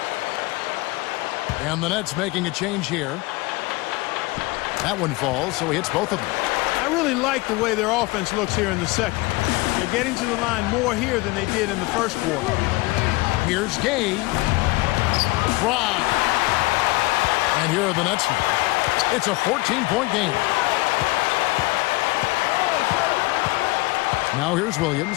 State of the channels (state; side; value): quieter; right; 22.5 dB